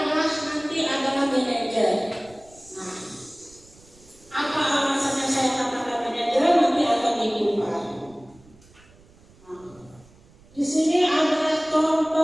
manajer. Nah, apa alasannya saya katakan manajer nanti akan dikupas. Nah, di sini adalah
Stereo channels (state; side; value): noise; right; rumble, 27 dB below the sound